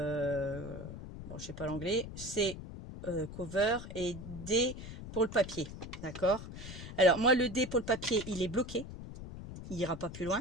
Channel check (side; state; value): left; noise; rumble, 11 dB below the sound